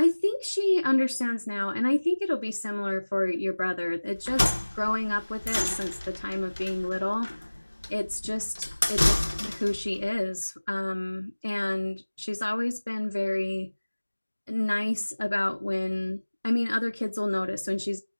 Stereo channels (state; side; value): inverted; both; correlation -1.00